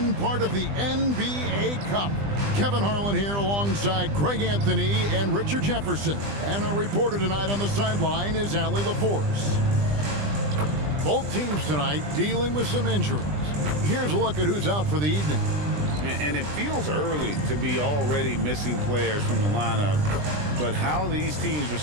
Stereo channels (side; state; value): left; late; 20 ms